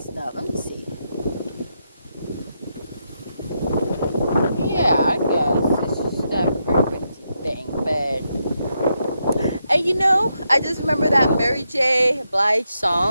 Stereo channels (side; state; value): both; inverted; correlation -0.82